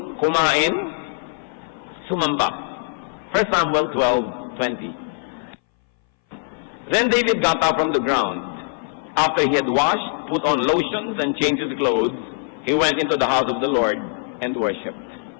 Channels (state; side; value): silent; right; 61 dB below the other